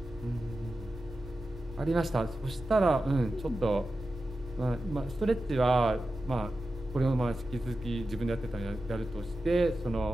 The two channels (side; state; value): both; normal; correlation 0.92